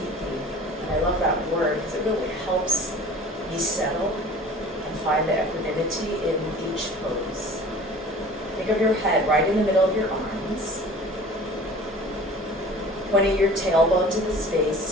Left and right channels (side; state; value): both; normal; correlation 0.44